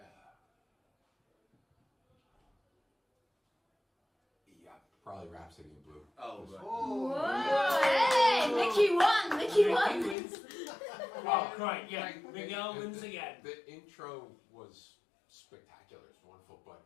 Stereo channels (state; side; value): drops out; right; at 10.2 s